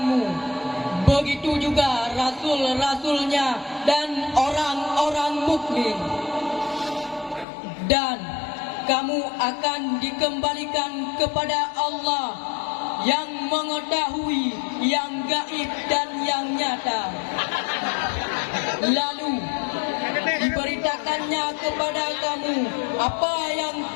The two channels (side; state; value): right; drops out; at 7.5 s